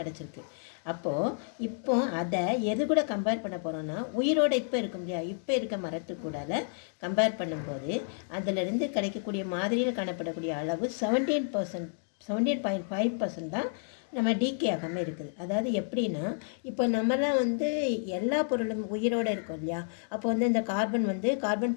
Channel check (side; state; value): right; silent; digital silence